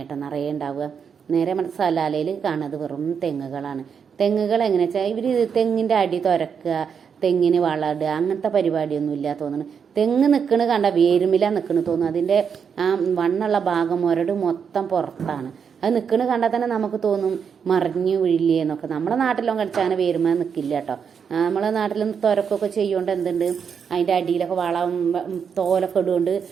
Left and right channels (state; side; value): quieter; left; 6.8 dB